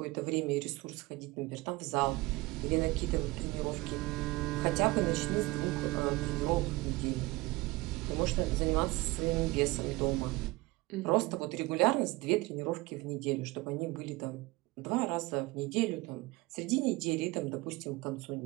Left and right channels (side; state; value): left; quieter; 21.5 dB